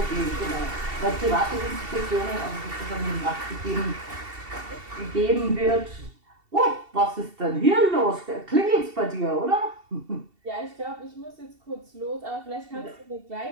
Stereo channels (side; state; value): left; late; 2.7 ms